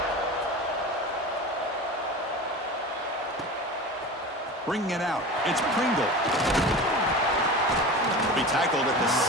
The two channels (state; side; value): normal; both; correlation 0.32